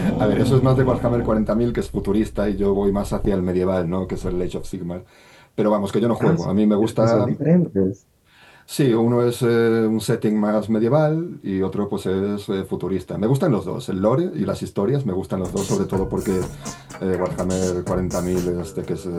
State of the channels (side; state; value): both; identical; correlation 1.00